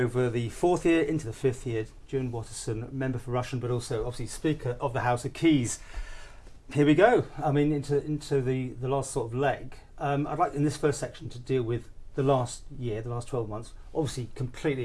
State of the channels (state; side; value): identical; both; correlation 1.00